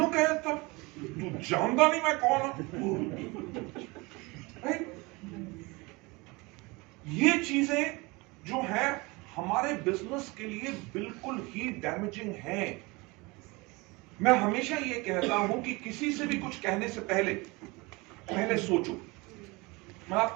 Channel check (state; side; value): quieter; left; 24.9 dB